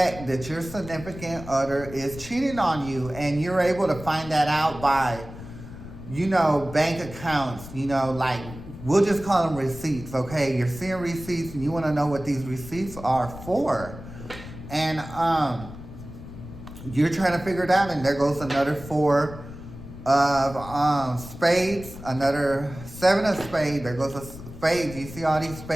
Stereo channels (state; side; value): noise; left; rumble, 14 dB below the sound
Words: that your significant other is cheating on you, and you're able to find that out by, you know, bank accounts, you know, like, we'll just call them receipts, okay? You're seeing receipts and you want to know what these receipts are for. And you're trying to figure it out, and there goes another 4 of spades, another 7 of spades, there goes a spades. You see all these